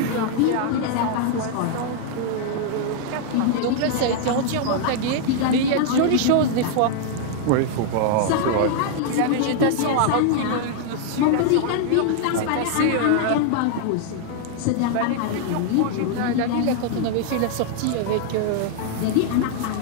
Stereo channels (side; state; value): both; different; correlation 0.00